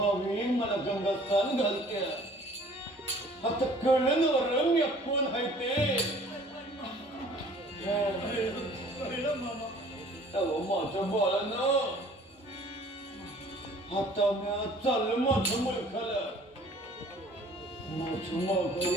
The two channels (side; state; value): both; normal; correlation 0.52